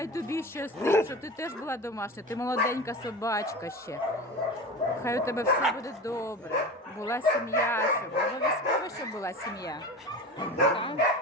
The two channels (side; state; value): both; normal; correlation 0.30